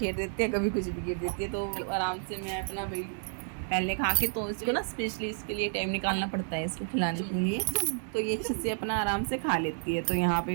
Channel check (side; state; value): left; silent; 57 dB below the other